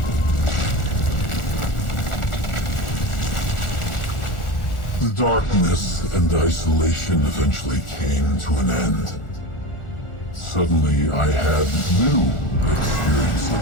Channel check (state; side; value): late; right; 1.4 ms